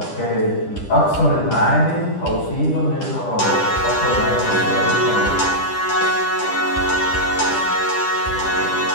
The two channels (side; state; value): right; late; 10 ms